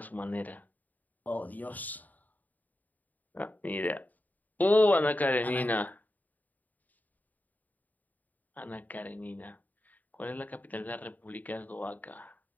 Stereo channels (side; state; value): right; late; 0.081 ms